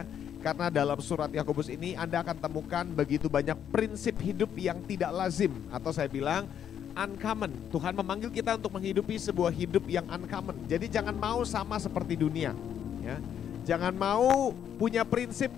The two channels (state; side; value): quieter; right; 9.1 dB